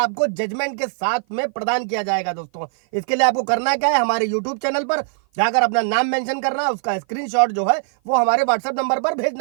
जजमेंट के साथ में प्रदान किया जाएगा। दोस्तों इसके लिए आपको करना क्या है, हमारे यूट्यूब चैनल पर जाकर अपना नाम मेंशन करना है, उसका स्क्रीनशॉट जो है वो हमारे व्हाट्सएप नंबर पर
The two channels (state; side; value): silent; left; 55 dB below the other